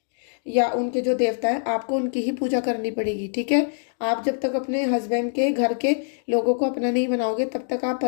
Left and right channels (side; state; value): right; silent; digital silence